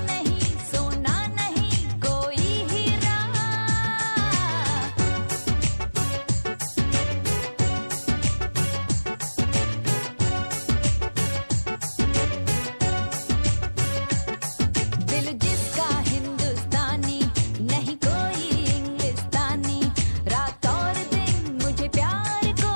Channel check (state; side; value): inverted; both; correlation -1.00